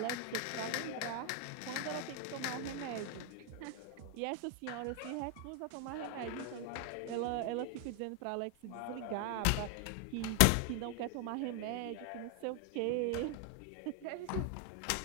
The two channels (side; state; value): both; different; correlation 0.00